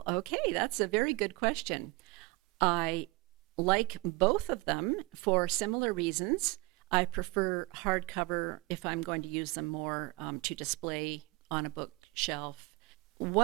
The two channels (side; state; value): left; quieter; 24.5 dB